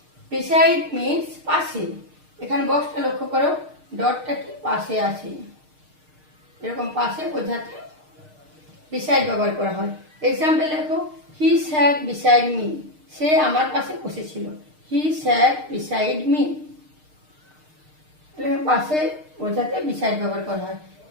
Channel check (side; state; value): left; late; 6.5 ms